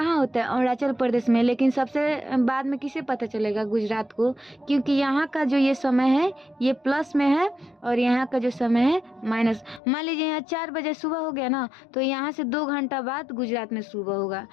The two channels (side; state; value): right; drops out; at 9.8 s